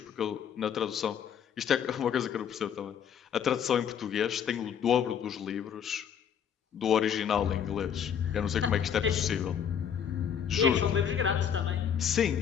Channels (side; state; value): right; quieter; 8.2 dB